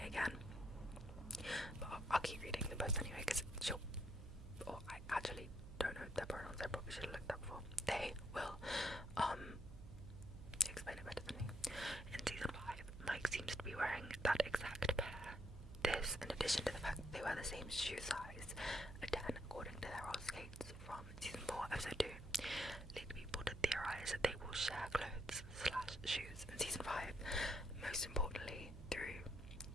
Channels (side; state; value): right; noise; hum, 12 dB below the sound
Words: again. But I'll keep reading the post anyway, because I actually don't know their pronouns. I probably should have looked up before. They will explain it better than me. In season 5, Mike seems to be wearing that exact pair. This, in addition to the fact that they wear the same shoe size, a 10 according to their roller skates from season 4 episode 2, lead people to theorise that they will share clothes / shoes in season 5. Most importantly